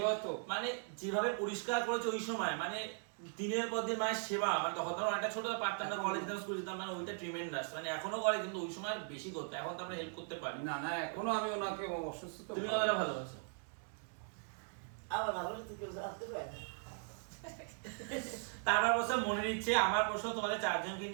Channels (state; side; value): silent; left; 52 dB below the other